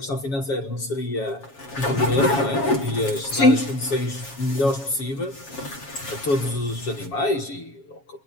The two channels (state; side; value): late; right; 7.3 ms